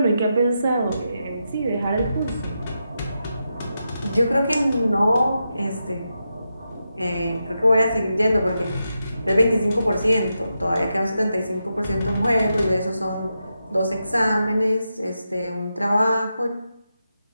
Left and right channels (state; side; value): inverted; both; correlation -0.87